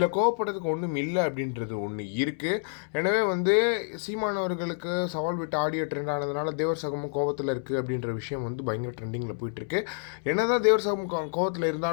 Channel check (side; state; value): right; silent; 59 dB below the other